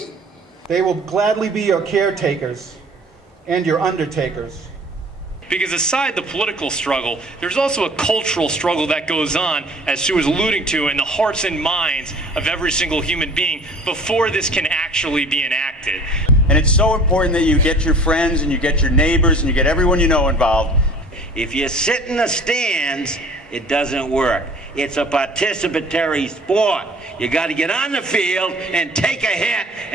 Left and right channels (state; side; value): normal; both; correlation 0.49